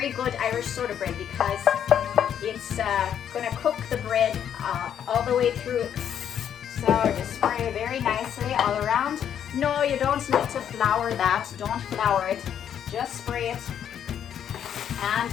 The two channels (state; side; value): quieter; right; 9.2 dB